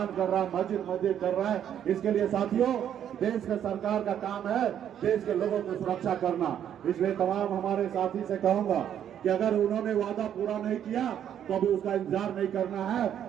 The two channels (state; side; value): quieter; left; 9.7 dB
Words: कर रहा है, मस्जिद कर रहा है। इसके लिए साथियों देश के सरकार का काम है देश के लोगों की सुरक्षा करना। इसलिए तमाम हमारे साथी से कहूंगा कि अगर उन्होंने वादा पूरा नहीं किया तो अभी उसका इंतजार नहीं करना है,